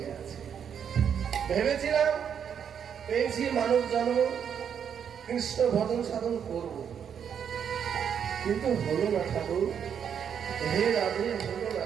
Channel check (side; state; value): left; quieter; 8.0 dB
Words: গেছে। ভেবেছিলাম পেয়েছি মানব জন্ম, কৃষ্ণ ভজন সাধন করব, কিন্তু হলো না ঠাকুর। হে রাধে, হলো না